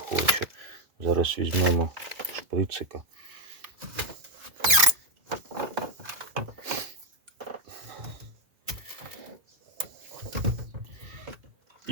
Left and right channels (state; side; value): late; left; 2.3 ms